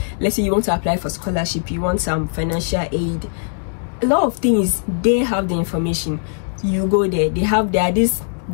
Let's say you want to apply for scholarship, you want some financial aid, a lot of things. They have the information. You go there, there are these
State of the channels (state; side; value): silent; right; digital silence